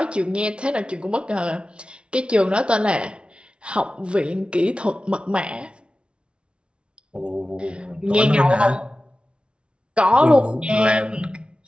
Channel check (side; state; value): left; late; 0.057 ms